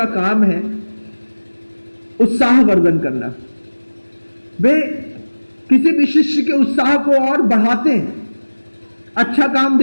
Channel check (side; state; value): both; inverted; correlation -1.00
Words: काम है उत्साह वर्धन करना। वे किसी भी शिष्य के उत्साह को और बढ़ाते हैं, अच्छा काम